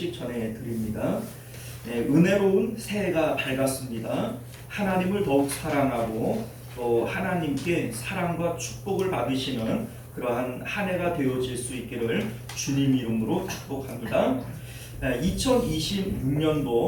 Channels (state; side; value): identical; both; correlation 1.00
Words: 전해드립니다. 은혜로운 새해가 밝았습니다. 하나님을 더욱 사랑하고 또 하나님께 사랑과 축복을 받으시는 그러한 한 해가 되어질 수 있기를 주님 이름으로 축복합니다.